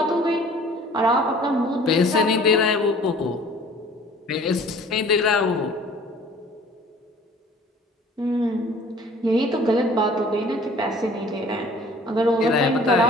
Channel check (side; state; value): both; normal; correlation 0.50